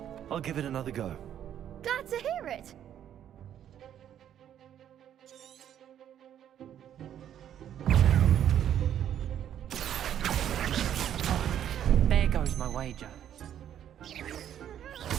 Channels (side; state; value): left; quieter; 10.2 dB